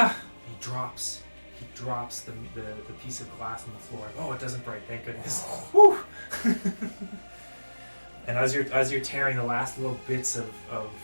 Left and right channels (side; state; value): both; inverted; correlation -1.00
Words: drops the piece of glass on the floor. Oh, it doesn't break, thank goodness. Whew. And as you're tearing the last little bits of